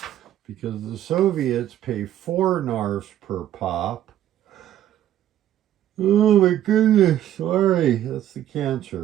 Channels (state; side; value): quieter; left; 11.9 dB